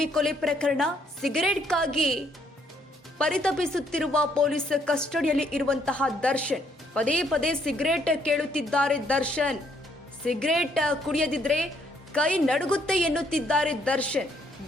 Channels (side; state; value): both; normal; correlation 0.69